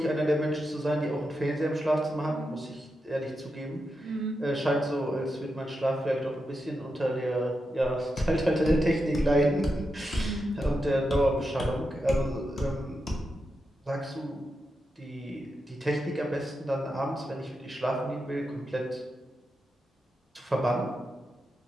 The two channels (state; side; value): normal; both; correlation 0.87